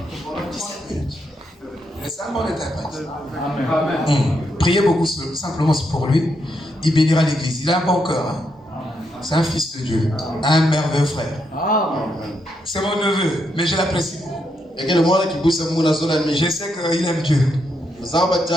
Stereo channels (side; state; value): both; normal; correlation 0.80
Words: pendant 17 minutes. Laissez-moi l'interprète. Priez beaucoup simplement pour lui. Il bénira l'église. Il a un bon cœur. Hein? C'est un fils de Dieu. Un merveilleux frère. C'est mon neveu, mais je l'apprécie beaucoup. Je sais qu'il aime Dieu. Il fait